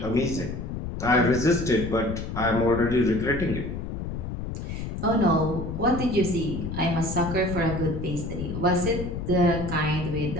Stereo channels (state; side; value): noise; left; rumble, 6 dB below the sound